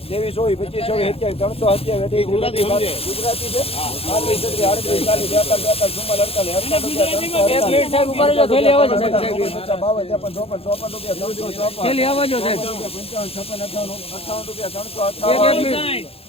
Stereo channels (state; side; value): late; right; 0.28 ms